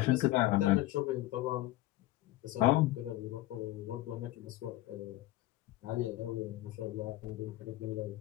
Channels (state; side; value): quieter; right; 16.9 dB